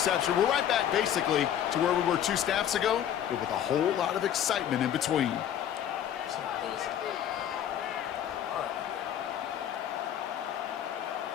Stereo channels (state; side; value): quieter; right; 10.1 dB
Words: We're right back, basically, to where we were 2 snaps ago, but with a whole lot of excitement in between.